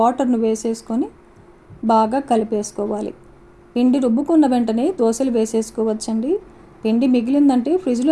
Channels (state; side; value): identical; both; correlation 1.00